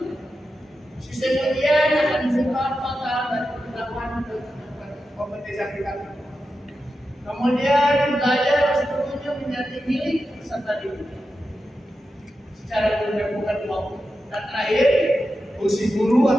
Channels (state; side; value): normal; both; correlation 0.90